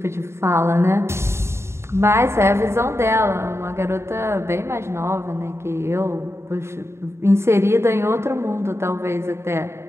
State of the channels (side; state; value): left; late; 0.13 ms